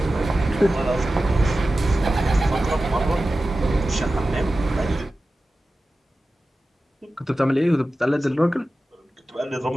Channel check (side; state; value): both; normal; correlation 0.94